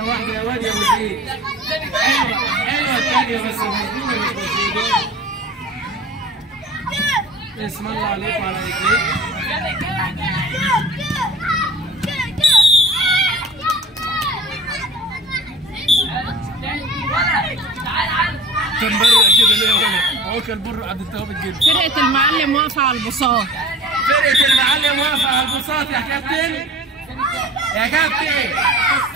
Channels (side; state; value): both; normal; correlation 0.41